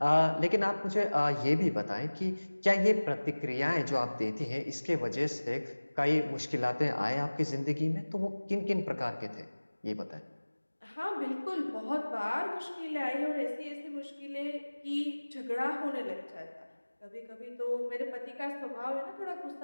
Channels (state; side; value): inverted; both; correlation -1.00